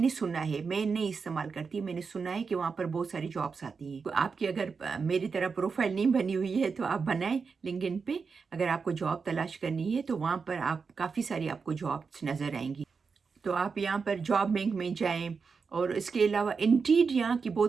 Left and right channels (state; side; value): quieter; left; 5.2 dB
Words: سنا ہے، میں نہیں استعمال کرتی، میں نے سنا ہے کہ وہاں پر بہت ساری جابس آتی ہیں۔ آپ کی اگر میری طرح پروفائل نہیں بنی ہوئی ہے تو آپ بنائیں لنکڈ ان پہ، اگر آپ کو جاب تلاش کرنی ہے تو وہاں پر آپ کافی ساری آپ کو جابس نظر آئیں گی۔ تو آپ یہاں پر جاب بینک میں جائیں، اور اس کے علاوہ انڈیڈ یہاں کی